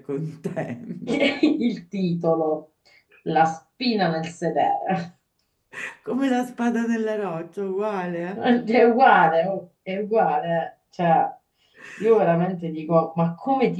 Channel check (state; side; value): identical; both; correlation 1.00